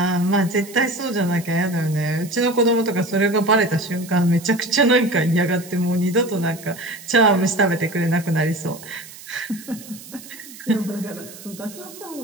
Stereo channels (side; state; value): right; noise; hiss, 17 dB below the sound